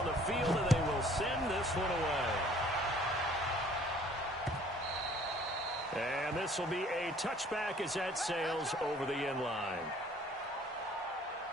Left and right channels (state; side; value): normal; both; correlation 0.55